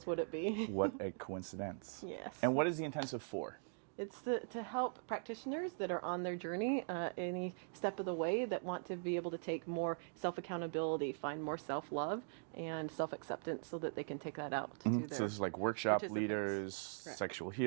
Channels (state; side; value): silent; left; digital silence